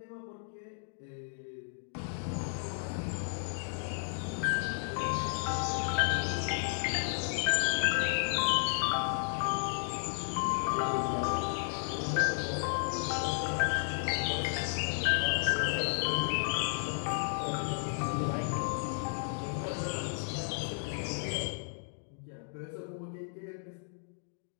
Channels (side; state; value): right; silent; digital silence